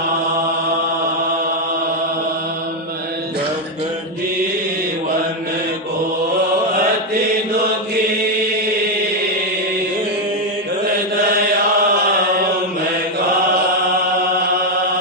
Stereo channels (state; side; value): normal; both; correlation 0.04